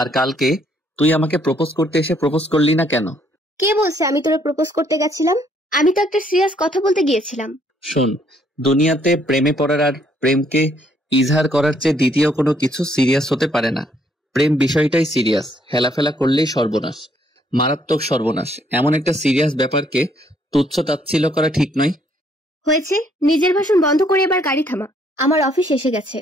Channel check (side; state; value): both; normal; correlation 0.68